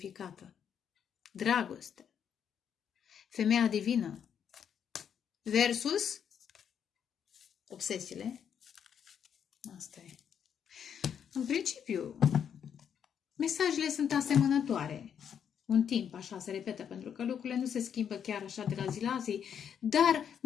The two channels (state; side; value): quieter; right; 8.2 dB